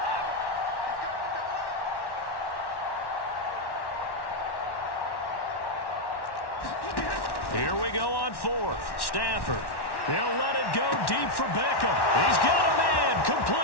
Here we go on 4th. Stafford. He'll let it go deep for Beckham. He's got a man.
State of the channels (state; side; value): late; right; 1.1 ms